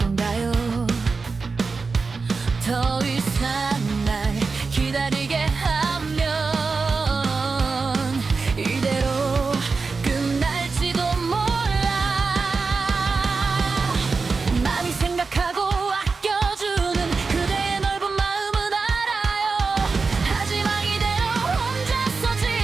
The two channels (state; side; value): quieter; left; 4.4 dB